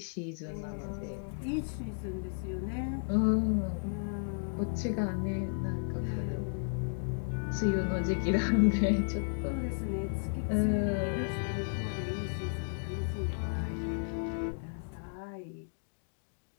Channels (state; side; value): silent; right; digital silence